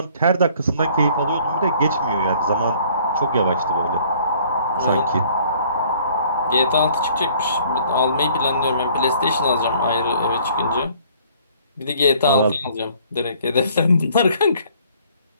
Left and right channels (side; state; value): both; inverted; correlation -0.58